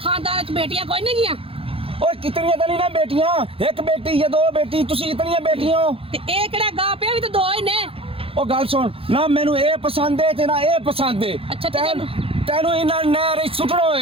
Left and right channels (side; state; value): left; late; 0.27 ms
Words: खानदान च बेटियां कोई नहीं गियां? ओए कितनियां तो नहीं ना बेटियां, एक बेटी या 2 बेटी, तुसी इतनियां बेटियां हो ते ए केड़ा गा पिया भी तो 2 ही ने। ओ गल सुन ना, मैनू ए पसंद है ते ना ए पसंद है। अच्छा तेनू इन्ना नहर सुटना